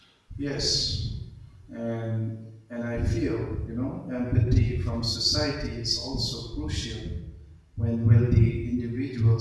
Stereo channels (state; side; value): identical; both; correlation 1.00